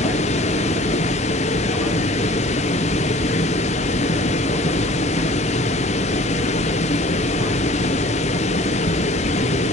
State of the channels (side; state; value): both; normal; correlation 0.49